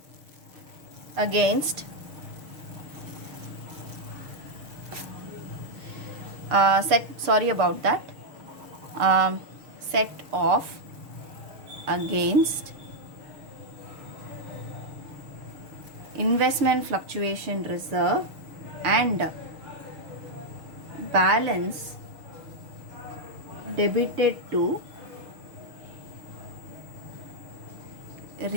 against set off against investment fluctuation reserve and balance debited to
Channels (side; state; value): left; late; 6.5 ms